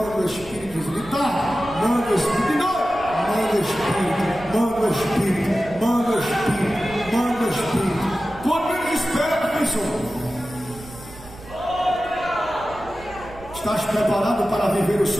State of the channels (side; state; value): right; noise; rumble, 18 dB below the sound